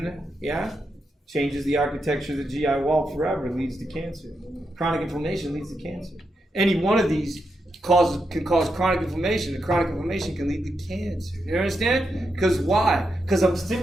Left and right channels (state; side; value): normal; both; correlation 0.84